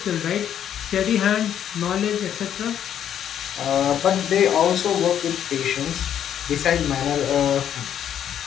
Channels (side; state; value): right; quieter; 9.7 dB